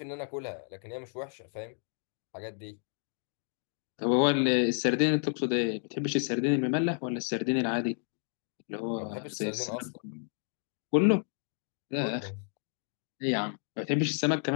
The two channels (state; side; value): silent; right; 57 dB below the other